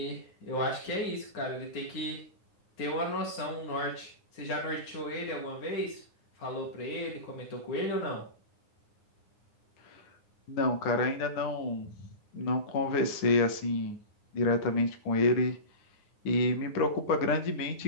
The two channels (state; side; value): late; right; 9.6 ms